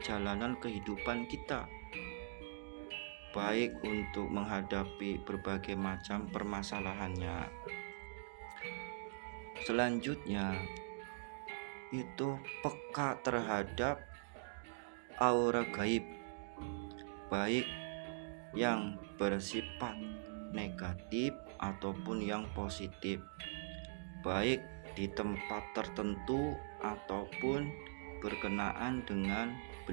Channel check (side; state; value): left; silent; digital silence